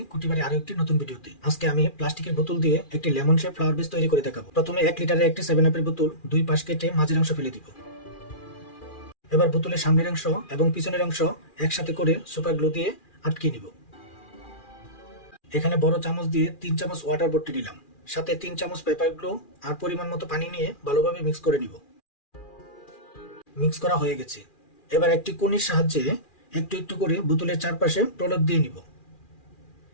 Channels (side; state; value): right; late; 2.4 ms